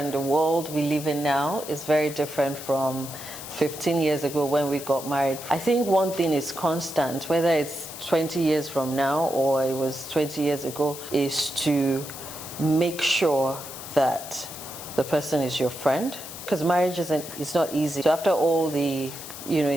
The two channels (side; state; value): left; noise; hiss, 11 dB below the sound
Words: The world we live in now is very different from 15 years ago when we got married. I think one thing is constant, whether it's 20 years from now or it was 20 years ago, is to make sure that the person is your friend. Because marriage it's not easy. So after all the